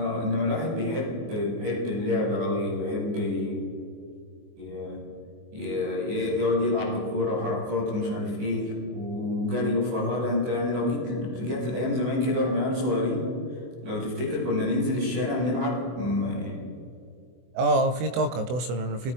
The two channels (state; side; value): late; left; 24 ms